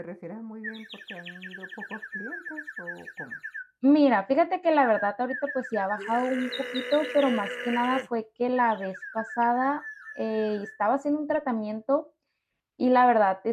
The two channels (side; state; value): both; identical; correlation 1.00